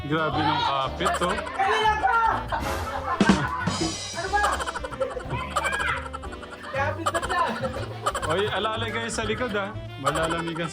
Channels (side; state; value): both; identical; correlation 1.00